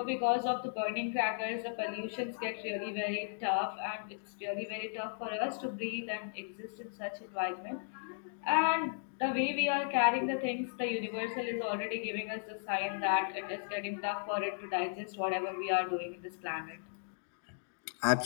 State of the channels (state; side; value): silent; right; digital silence